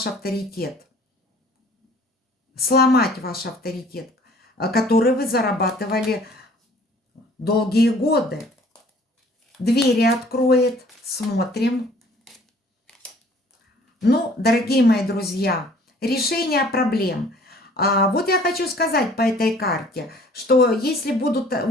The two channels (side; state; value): both; normal; correlation 0.54